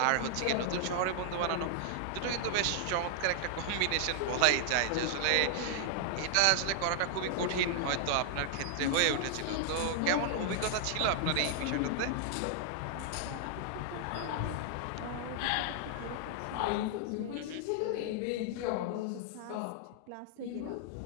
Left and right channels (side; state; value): both; different; correlation -0.01